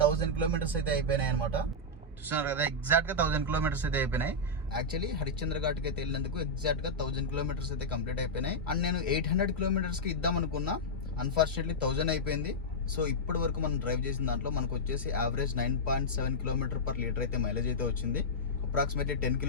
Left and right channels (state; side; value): normal; both; correlation -0.07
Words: కిలోమీటర్స్ అయితే అయిపోయినాయి అనమాట. చూస్తున్నారు కదా, ఎగ్జాక్ట్గా 1000 కిలోమీటర్స్ అయితే అయిపోయినాయి. యాక్చువల్లీ హరిశ్చంద్ర ఘాట్కి అయితే వెళ్ళినందుకు ఎగ్జాక్ట్గా 1000 కిలోమీటర్స్ అయితే కంప్లీట్ అయిపోయినాయి. అండ్ నేను 800 కిలోమీటర్స్కి ఇద్దాం అనుకున్నా. అన్ఫార్చునేట్లీ 1000 అయిపోయింది. సో ఇప్పటి వరకు మనం డ్రైవ్ చేసిన దాంట్లో మనకు వచ్చేసి యావరేజ్ 9.7 కిలోమీటర్ పర్ లీటర్ అయితే మైలేజ్ అయితే వచ్చింది. అప్రాక్సిమేట్లీ 10